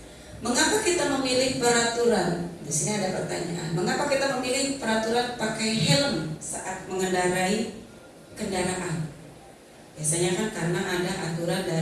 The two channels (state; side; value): identical; both; correlation 1.00